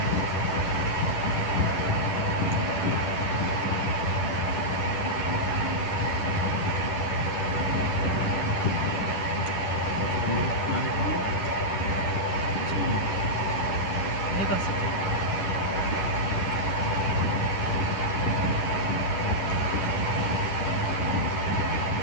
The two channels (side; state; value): right; late; 10 ms